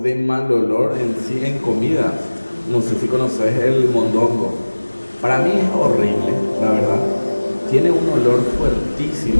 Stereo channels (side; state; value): both; inverted; correlation -1.00